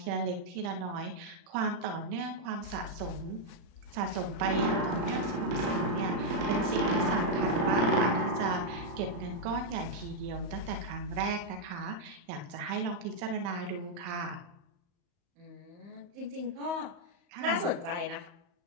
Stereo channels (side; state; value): left; late; 35 ms